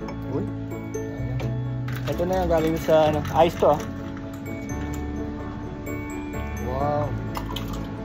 Uy. Ito na yung galing sa ano, ice to. Wow.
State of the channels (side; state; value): both; identical; correlation 1.00